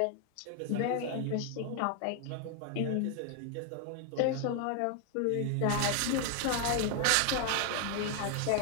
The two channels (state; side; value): different; both; correlation 0.00